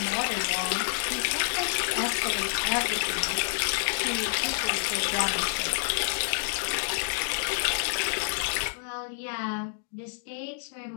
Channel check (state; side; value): silent; right; digital silence